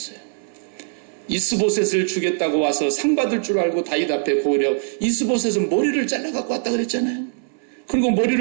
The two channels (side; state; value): left; silent; 62 dB below the other